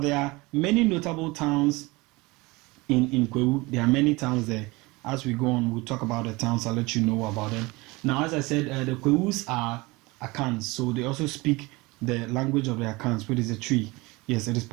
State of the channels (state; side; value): quieter; left; 23.3 dB